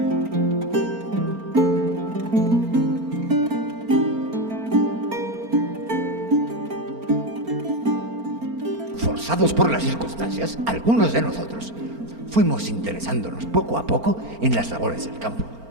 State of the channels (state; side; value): late; left; 4.4 ms